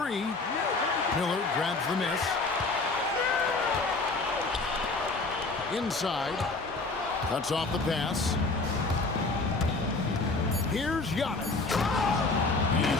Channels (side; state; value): right; quieter; 3.6 dB